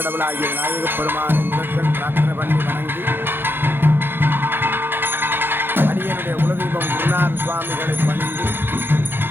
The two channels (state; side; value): late; left; 0.10 ms